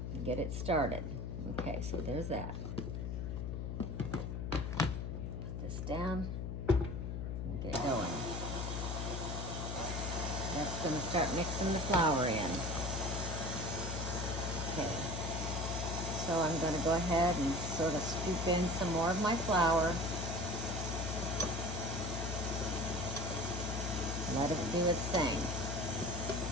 and get it started. Okay, so there's that. Put this down and get it going. That's going to start mixing the flour in. Okay, so I'm going to go ahead and sort of scoop in some more of my flour. Let it do its thing.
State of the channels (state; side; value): noise; left; hum, 3 dB below the sound